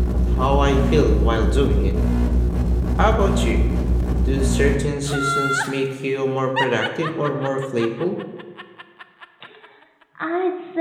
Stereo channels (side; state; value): both; identical; correlation 1.00